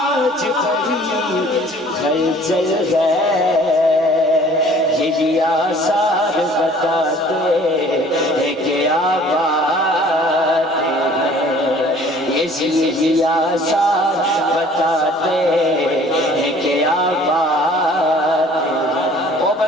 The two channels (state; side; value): normal; both; correlation 0.52